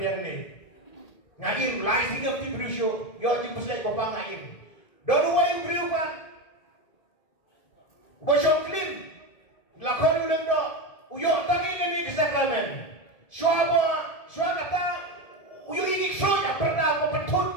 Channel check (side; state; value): right; late; 1.7 ms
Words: ni ngaim lai singap ti brusyo yo ti puslay ko pa ngaim donu wa yung briu pa bosyo clean la ko ulang do uyo tangin ni kesakramen shwaba kata uyo ini soya perda ko petut